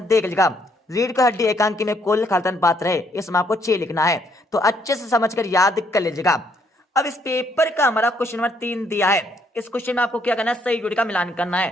देख लीजिएगा, रीढ़ का हड्डी एकांकी में कुल खालतन पात्र है। इसमें आपको 6 लिखना है। तो अच्छे से समझकर याद कर लीजिएगा। अब इस पेपर का हमारा क्वेश्चन नंबर 3 दिया है। इस क्वेश्चन में आपको क्या करना है, सही जोड़ी का मिलान करना है।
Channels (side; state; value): both; normal; correlation 0.70